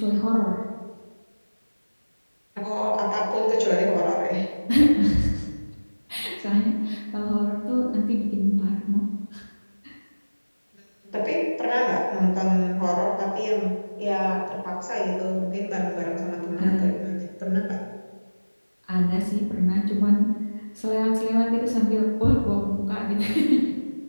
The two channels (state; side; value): inverted; both; correlation -1.00